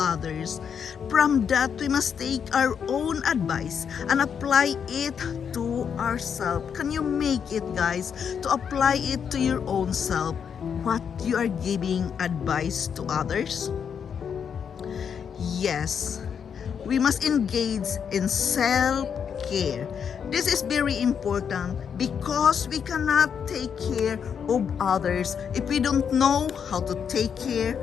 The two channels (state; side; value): quieter; right; 7.3 dB